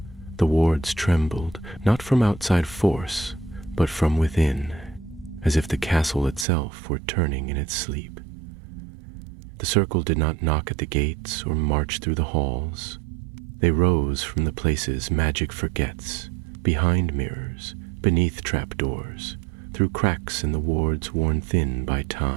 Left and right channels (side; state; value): left; drops out; at 6.5 s